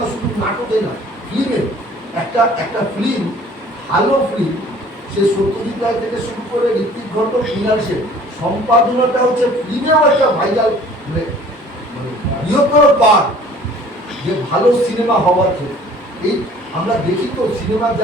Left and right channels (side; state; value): both; normal; correlation 0.51